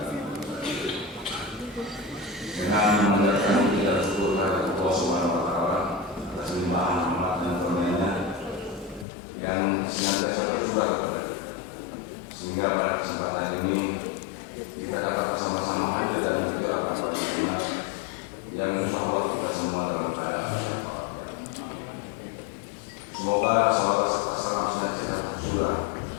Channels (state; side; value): drops out; right; at 9.1 s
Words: dengan mengucapkan puji dan syukur kepada Allah Subhanahu wa Ta'ala atas limpahan rahmat dan karunia-Nya yang senantiasa tercurah kepada kita, sehingga pada kesempatan ini kita dapat bersama-sama hadir dan juga akan bersama yang insya Allah kita semua dalam keadaan sehat. Semoga salam senantiasa tercurah